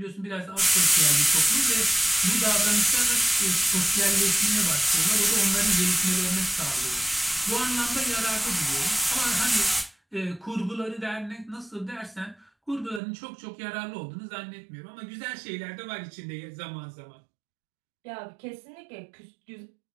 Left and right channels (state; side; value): drops out; left; at 13.0 s